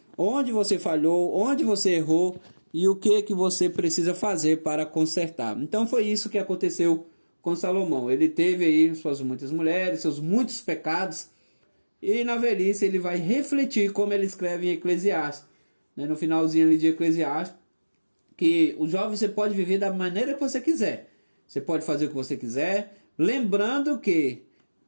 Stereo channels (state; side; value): inverted; both; correlation -1.00